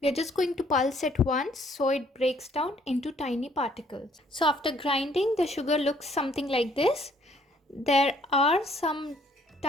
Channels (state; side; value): normal; both; correlation 0.63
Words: We are just going to pulse it once so it breaks down into tiny particles. So after grinding, the sugar looks something like this. There are some